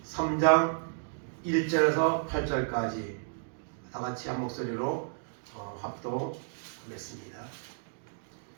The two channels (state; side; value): silent; left; digital silence